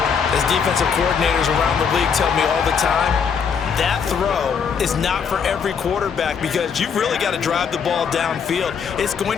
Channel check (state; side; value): quieter; right; 6.6 dB